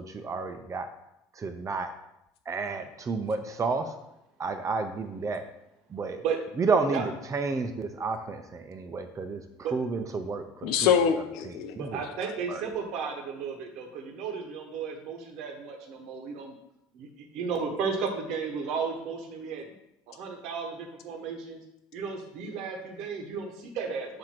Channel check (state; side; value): normal; both; correlation 0.41